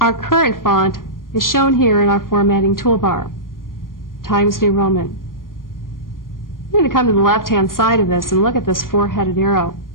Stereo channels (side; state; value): right; late; 0.91 ms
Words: current font is shown here in our formatting toolbar, Times New Roman. I'm going to come to the left-hand side of this and look at this four-headed arrow